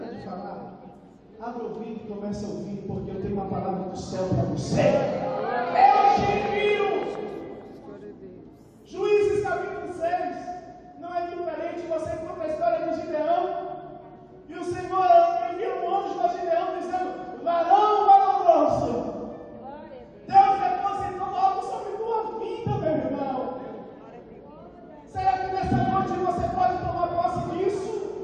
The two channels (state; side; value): identical; both; correlation 1.00